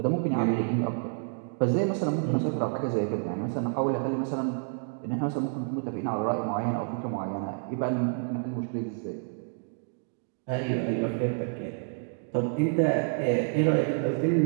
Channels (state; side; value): silent; left; digital silence